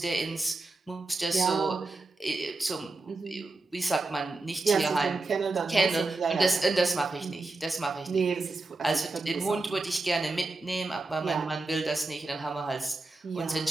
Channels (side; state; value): left; quieter; 3.2 dB